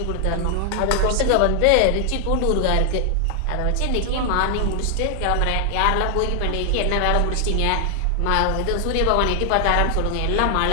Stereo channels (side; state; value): both; different; correlation 0.00